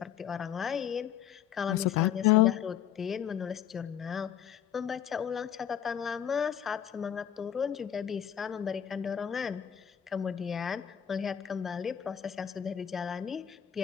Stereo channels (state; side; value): quieter; right; 9.4 dB